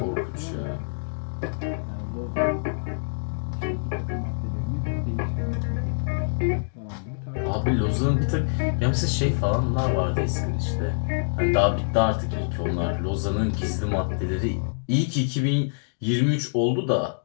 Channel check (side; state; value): right; silent; digital silence